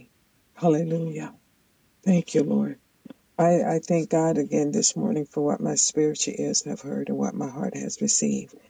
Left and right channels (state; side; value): identical; both; correlation 1.00